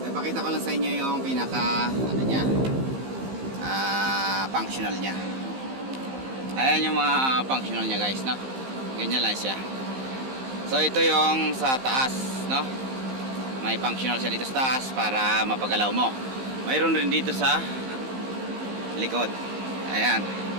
ipakita ko lang sa inyo yung pinaka ano niya, functional niya. Ayan yung mga functional niya guys, no? Ganyan lang siya. So ito yung sa taas, no? May functional siya dito sa taas para mapagalaw mo. Mayroon rin dito sa likod. Ayan.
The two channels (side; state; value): left; late; 15 ms